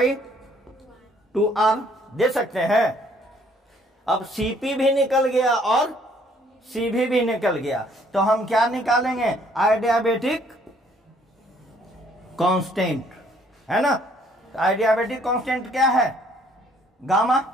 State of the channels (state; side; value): normal; both; correlation 0.63